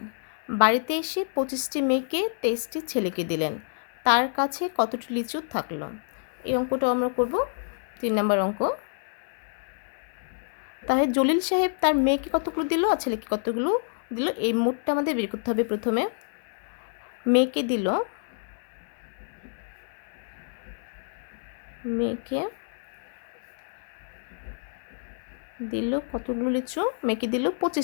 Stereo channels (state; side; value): silent; right; 59 dB below the other